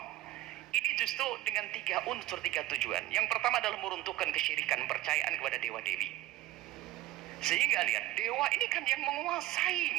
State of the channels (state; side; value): quieter; left; 15.8 dB